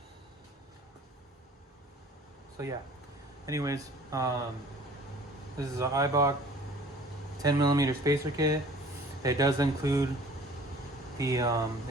So yeah, anyways, this is an Eibach 10 millimeter spacer kit. It does include the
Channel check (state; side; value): normal; both; correlation 0.49